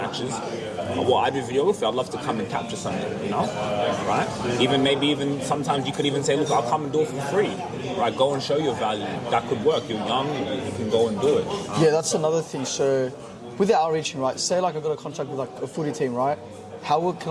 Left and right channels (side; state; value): both; identical; correlation 1.00